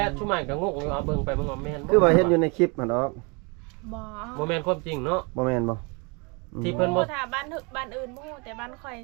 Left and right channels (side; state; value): left; quieter; 31.0 dB